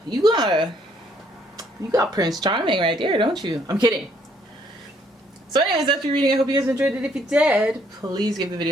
You got Prince Charming right there, don't you? I'm kidding. So anyways, after reading, I hope you guys enjoyed it. If you did, please give the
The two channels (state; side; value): normal; both; correlation 0.66